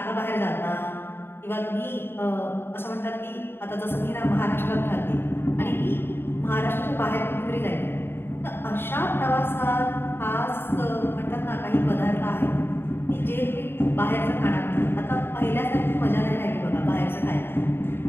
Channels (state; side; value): late; right; 0.11 ms